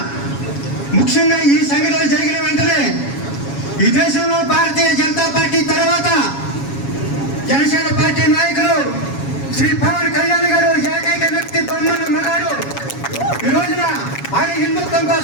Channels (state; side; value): late; right; 7.2 ms